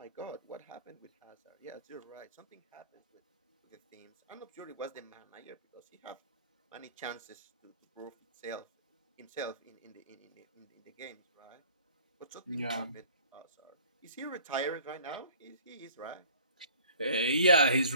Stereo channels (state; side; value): inverted; both; correlation -0.50